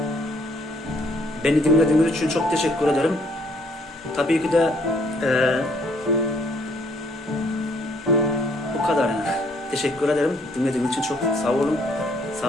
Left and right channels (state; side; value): normal; both; correlation 0.65